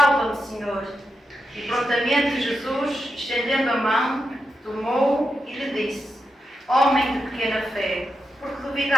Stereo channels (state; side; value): normal; both; correlation 0.87